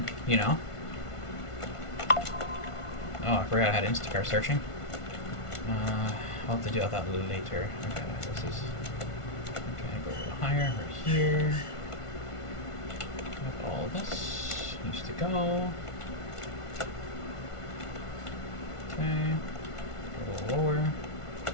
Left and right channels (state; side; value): late; right; 1.5 ms